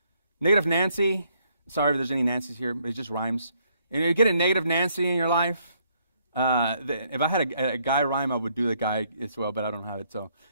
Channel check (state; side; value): inverted; both; correlation -0.70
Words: negative Nancy. Sorry if there's any Nancy's here, but it just rhymes. And you get a negative Nancy in your life. If I had a guy rhyme, I would do the guy as well, but I don't have it. So